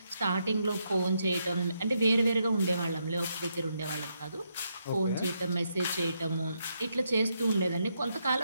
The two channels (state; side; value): inverted; both; correlation -0.80